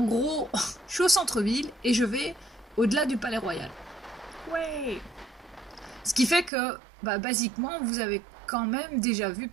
gros, je suis au centre-ville et je vais au-delà du Palais Royal. Ouais! Ce qui fait que, basiquement, vous avez quand même déjà vu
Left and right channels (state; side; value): drops out; left; at 6.5 s